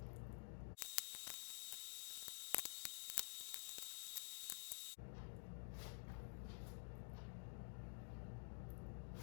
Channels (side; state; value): right; silent; digital silence